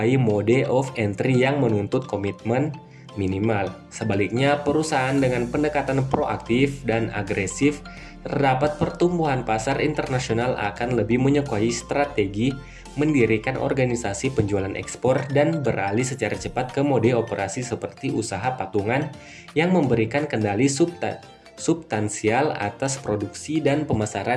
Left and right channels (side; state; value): both; identical; correlation 1.00